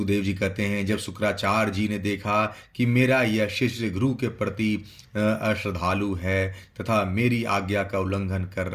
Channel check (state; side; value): identical; both; correlation 1.00